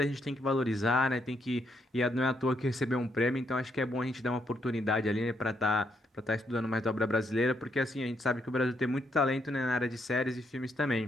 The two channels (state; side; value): normal; both; correlation 0.76